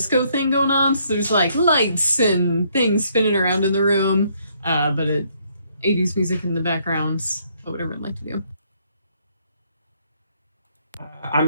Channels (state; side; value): inverted; both; correlation -0.69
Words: thing going on. So there's like lights and things spinning around in the room, but 80s music in the background. What would everyone like to do?